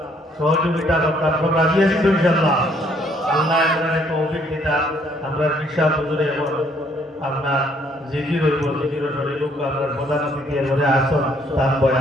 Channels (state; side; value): normal; both; correlation 0.65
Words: সহযোগিতা করতাম, রাজি আছি তো ইনশাআল্লাহ। আল্লাহ এবারে তৌফিক দিতা আমরা বিশাল হুজুরে আপনার জিকির হইব জিকির শরীর আপনার প্রধান অতিথি এবারে আসন তার